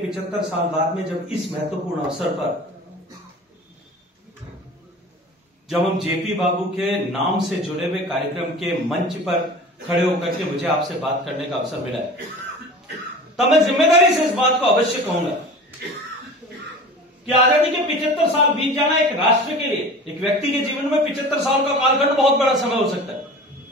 साल बाद में जब इस महत्वपूर्ण अवसर पर जब हम जेपी बाबू के नाम से जुड़े हुए कार्यक्रम के मंच पर खड़े होकर के मुझे आपसे बात करने का अवसर मिला है, तब मैं जिम्मेदारी से इस बात को अवश्य कहूंगा कि आजादी के 75 साल बीत जाना एक राष्ट्र के लिए, एक व्यक्ति के जीवन में 75 साल का कालखंड बहुत बड़ा समय हो सकता है।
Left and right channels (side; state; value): both; normal; correlation 0.38